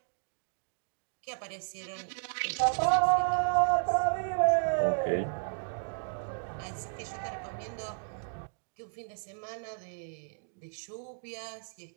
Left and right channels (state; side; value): silent; left; digital silence